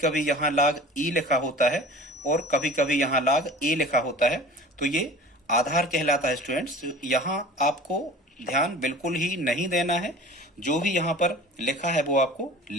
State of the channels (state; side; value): normal; both; correlation 0.41